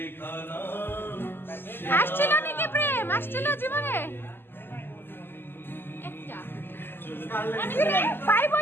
আসছিল নাকি প্রেম? আসছিল জীবনে? একটা। ভাই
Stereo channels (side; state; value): right; late; 0.10 ms